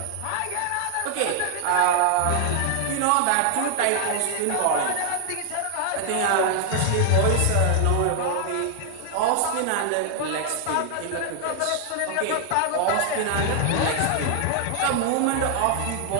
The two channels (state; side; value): different; both; correlation 0.00